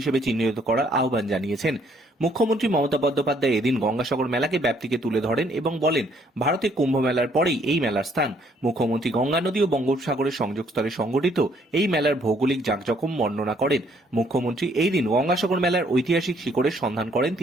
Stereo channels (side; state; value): both; normal; correlation 0.66